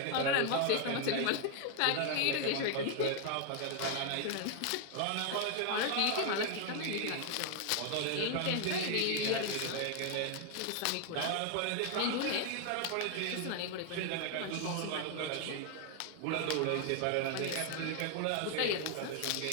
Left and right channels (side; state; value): both; different; correlation 0.00